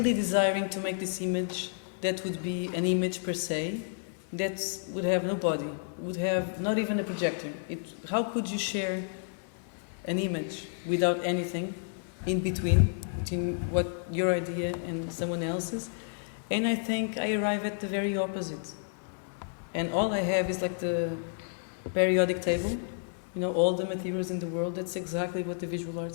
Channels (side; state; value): right; silent; digital silence